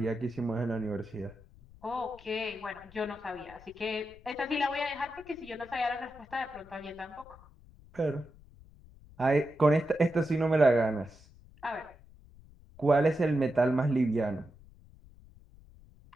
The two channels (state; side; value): noise; left; rumble, 23 dB below the sound